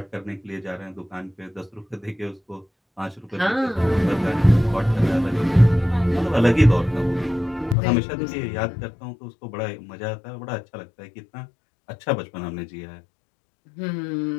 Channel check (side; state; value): right; drops out; at 7.8 s